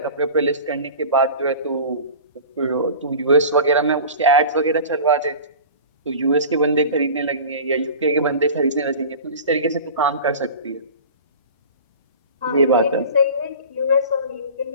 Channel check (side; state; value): both; inverted; correlation -0.37